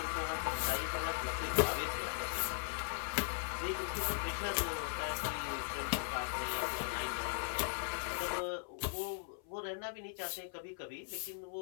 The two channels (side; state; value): right; silent; 52 dB below the other